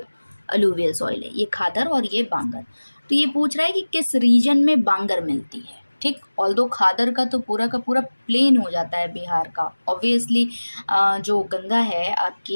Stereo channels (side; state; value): both; inverted; correlation -1.00